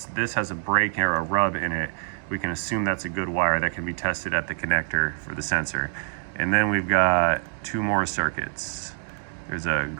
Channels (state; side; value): silent; left; digital silence